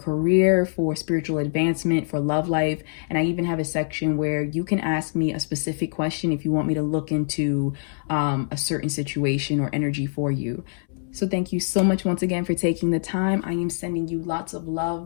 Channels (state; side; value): silent; right; 62 dB below the other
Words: for spiritual advancement, for love life. And I even have a section where you can ask me a specific question if you want me to look into a certain situation or energy for you. So thank you so much once again for taking the time. I am sending you lots of